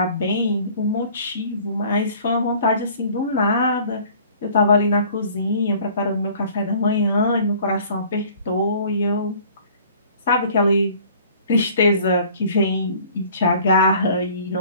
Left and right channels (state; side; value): inverted; both; correlation -0.51